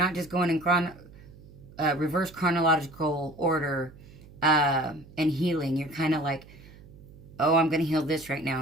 just going in reverse chronological order and healing. You're kind of like, oh, I'm going to heal this right now,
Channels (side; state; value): right; noise; hum, 21 dB below the sound